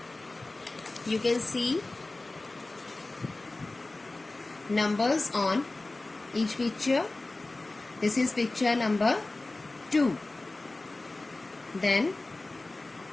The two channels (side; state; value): right; quieter; 3.0 dB